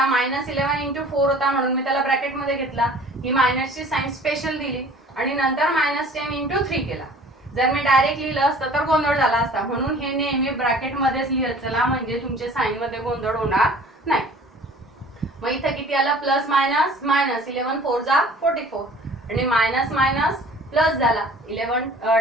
-11 into 4 होता म्हणून मी त्याला ब्रॅकेट मध्ये घेतला, ही मायनसची साइन स्पेशल दिली आणि नंतर -10 इंटू 3 केला. जर मी डायरेक्ट लिहिलं असतं तर गोंधळ झाला असता, म्हणून हे नेहमी ब्रॅकेट मध्येच लिहत चला, म्हणजे तुमचे साइन मध्ये गोंधळ होणार नाही. मग इथे किती आलं, प्लस मायनस मायनस, 11 4 जा 44 आणि मायनस मायनस प्लस झाला, 11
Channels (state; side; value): normal; both; correlation 0.48